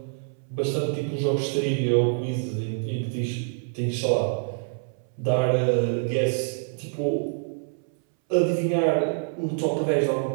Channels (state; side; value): silent; left; 61 dB below the other